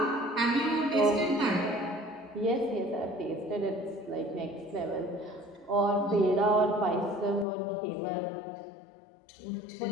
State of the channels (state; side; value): drops out; right; at 7.5 s